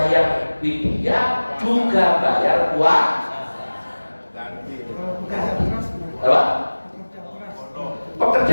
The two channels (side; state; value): both; inverted; correlation -1.00